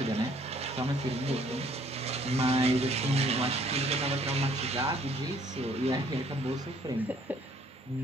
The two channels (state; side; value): normal; both; correlation 0.61